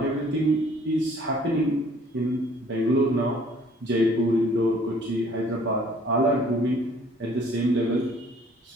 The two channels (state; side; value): normal; both; correlation 0.57